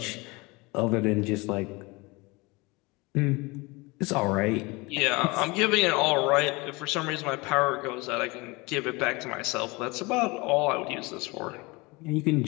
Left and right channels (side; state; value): right; quieter; 24.9 dB